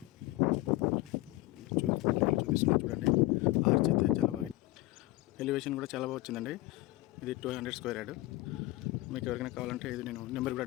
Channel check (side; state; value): right; quieter; 19.0 dB